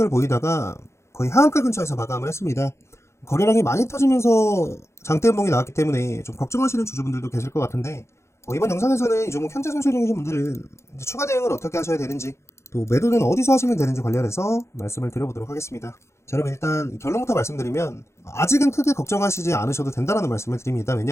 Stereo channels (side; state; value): right; late; 0.13 ms